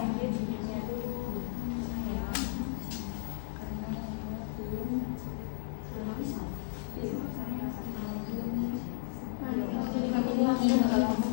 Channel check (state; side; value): silent; right; digital silence